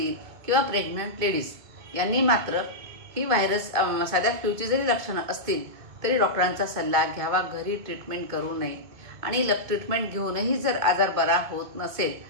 किंवा प्रेग्नंट लेडीज यांनी मात्र ही व्हायरस साध्या फ्लूची जरी लक्षणं असतील तरी डॉक्टरांचा सल्ला घ्यावा. घरी ट्रीटमेंट करू नये. आणि ट्रीटमेंट घेऊनही जर आजार बरा होत नसेल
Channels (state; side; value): late; left; 2.2 ms